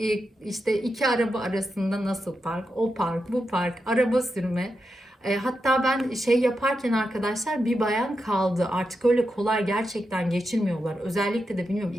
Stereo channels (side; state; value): both; normal; correlation 0.87